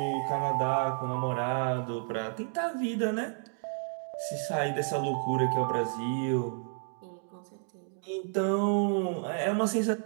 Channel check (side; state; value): left; silent; 57 dB below the other